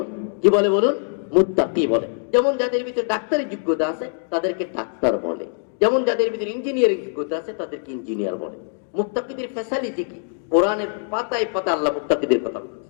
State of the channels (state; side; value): silent; right; 59 dB below the other